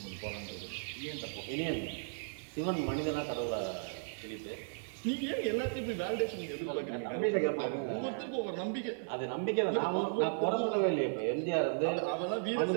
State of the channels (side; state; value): left; silent; 54 dB below the other